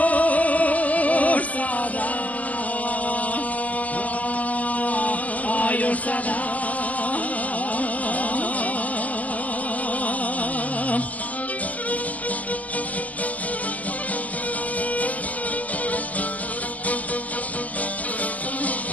sada, još sada.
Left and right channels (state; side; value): late; right; 0.072 ms